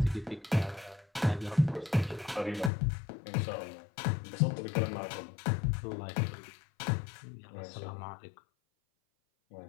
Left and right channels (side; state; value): right; drops out; at 2.7 s